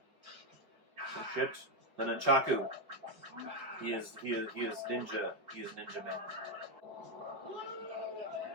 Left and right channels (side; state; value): left; late; 5.2 ms